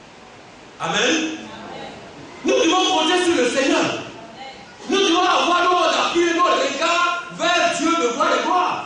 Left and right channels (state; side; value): identical; both; correlation 1.00